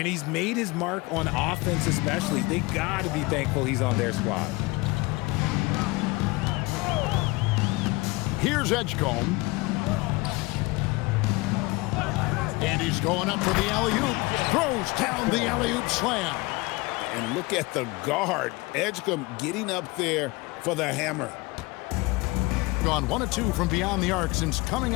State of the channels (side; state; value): right; quieter; 23.9 dB